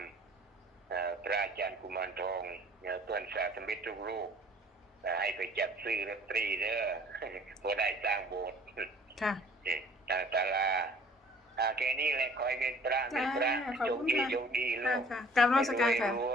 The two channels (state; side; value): normal; both; correlation 0.53